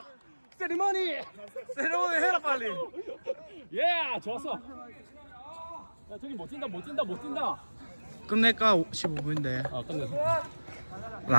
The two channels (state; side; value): inverted; both; correlation -1.00